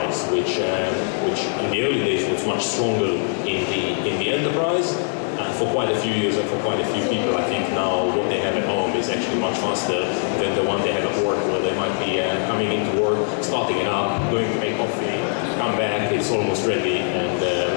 which in the early days was much stronger in the enterprise. For quite a few years and for quite a few people, I think now what they have at home is actually much faster than the one they have at work, where they might be coming into work, starting it up, going to make coffee, come back, it's almost ready, and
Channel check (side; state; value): right; silent; 64 dB below the other